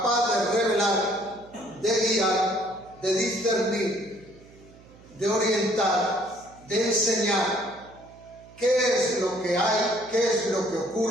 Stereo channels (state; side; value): noise; right; hum, 24 dB below the sound